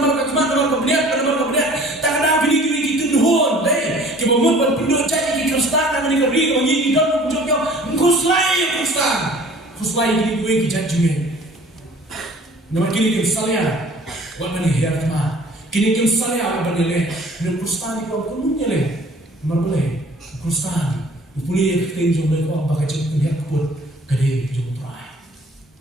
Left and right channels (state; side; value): normal; both; correlation 0.50